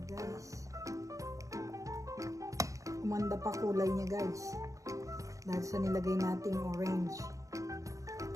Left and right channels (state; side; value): late; left; 0.16 ms